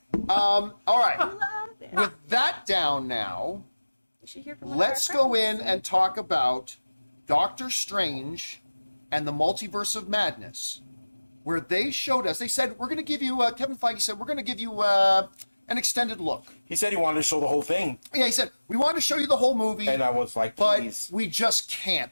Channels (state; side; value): inverted; both; correlation -1.00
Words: All right. Love it. With that down now, You should hear from one of our let's go friends. in and talk about Doctor Strange and the Multiverse of Madness, where they showed us, they said, we're going to give you, Kevin Feige said, we're going to give you an extended look. he said he wanted to show the whole thing, Yeah, he said, we want to show you the whole movie, and I was like, but please. we just can't.